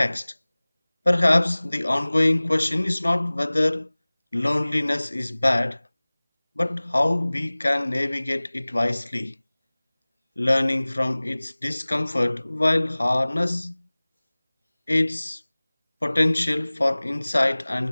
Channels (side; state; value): both; inverted; correlation -1.00